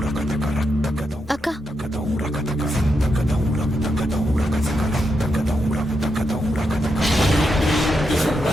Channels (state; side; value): normal; both; correlation 0.84